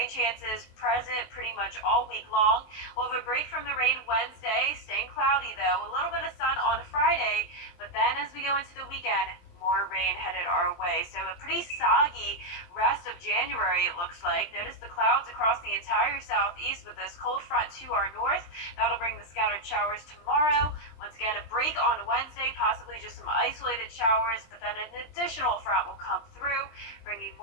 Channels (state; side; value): late; right; 23 ms